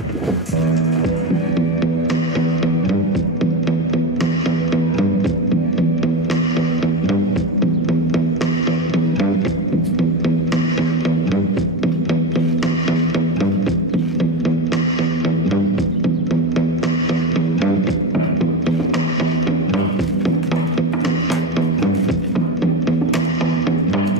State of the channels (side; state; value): both; normal; correlation 0.22